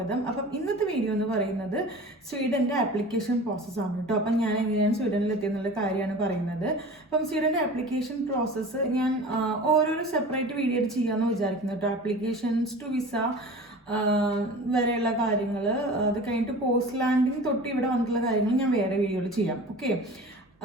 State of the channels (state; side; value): normal; both; correlation 0.38